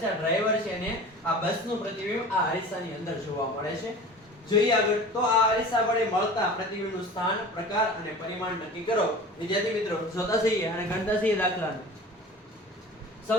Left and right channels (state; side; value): normal; both; correlation 0.38